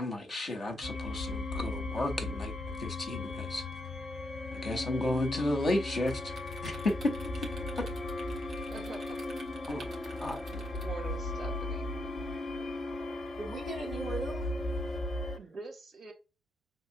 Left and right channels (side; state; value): both; normal; correlation 0.80